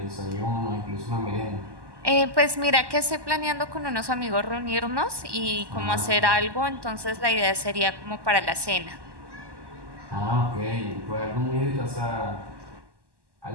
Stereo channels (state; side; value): late; left; 1.1 ms